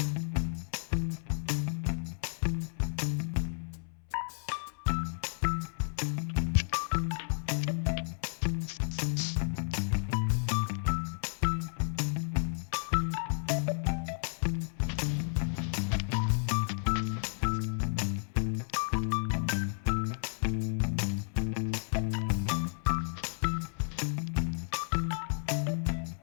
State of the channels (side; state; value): right; silent; 56 dB below the other